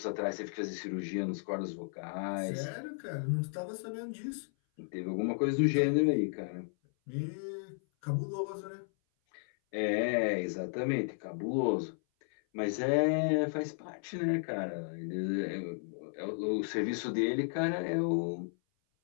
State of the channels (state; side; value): silent; right; 55 dB below the other